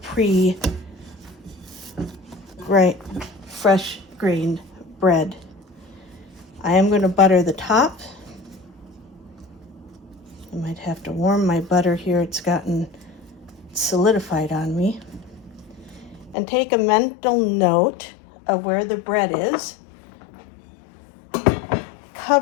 fresh grained bread. I am going to butter the top. I might have to warm my butter here. It's gotten solidified on me. And take a mental note of where the bread is.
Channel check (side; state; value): right; drops out; at 16.4 s